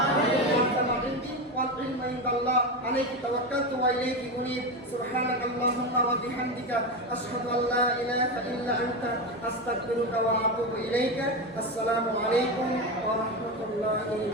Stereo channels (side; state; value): both; normal; correlation 0.17